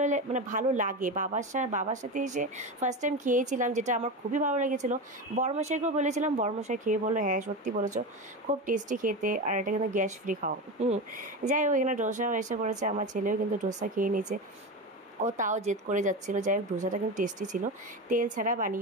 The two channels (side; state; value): both; normal; correlation 0.21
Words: মানে ভালো লাগে। বাবার সাথে এসে ফার্স্ট টাইম খেয়েছিলাম, যেটা আমার খুবই ভালো লেগেছিলো। বড়মশাইকেও বলেছিলাম, বড়মশাই খেয়ে বললো হ্যাঁ সত্যি বলেছো, খুব টেস্টি খেতে, আর এটা কিন্তু গ্যাস ফ্রি খাও। যাই হোক, এখানে ডোসাও এসে পড়েছে, আমার ছেলেও কিন্তু ডোসা খেয়ে নিয়েছে। ও তাও জেদ করে যাচ্ছিলো। যাই হোক, ডোসাটা কিন্তু টেস্টি ছিল, তেল ছাড়া